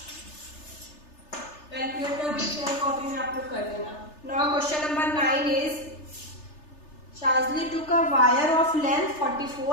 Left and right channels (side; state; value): right; late; 3.3 ms